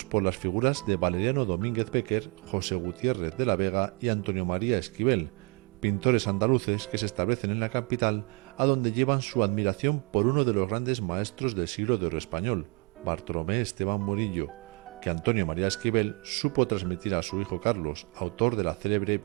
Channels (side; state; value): left; quieter; 31.2 dB